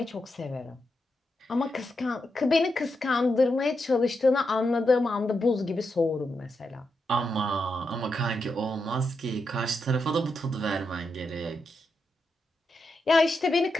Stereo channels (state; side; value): normal; both; correlation 0.85